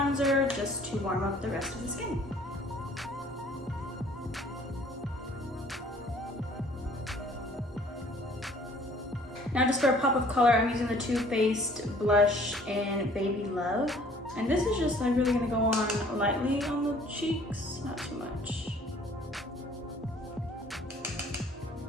just to warm up the rest of the skin. Now just for a pop of color, I'm using the TooFaced blush in Baby Love. And this is just like really gonna go on lightly on the cheeks, not too much.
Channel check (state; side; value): normal; both; correlation 0.55